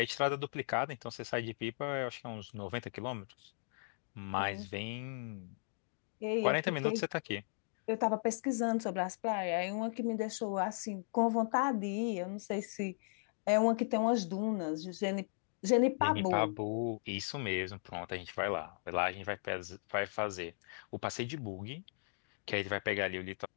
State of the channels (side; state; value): right; silent; digital silence